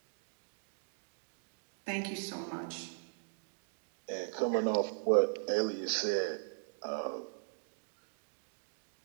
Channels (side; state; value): left; silent; digital silence